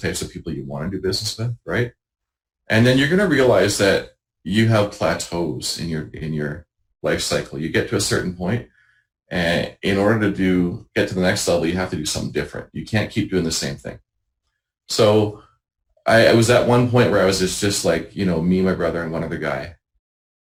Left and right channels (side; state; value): both; identical; correlation 1.00